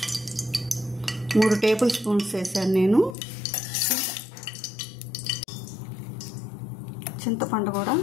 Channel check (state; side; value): drops out; right; at 3.2 s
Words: మూడు టేబుల్ స్పూన్స్ వేసాను నేను. చింతపండు కూడా